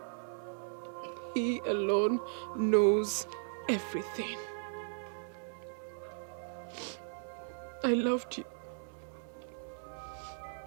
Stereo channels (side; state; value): left; silent; 53 dB below the other